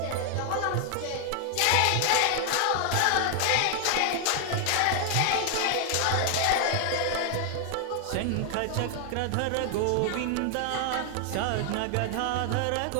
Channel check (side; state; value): both; different; correlation 0.00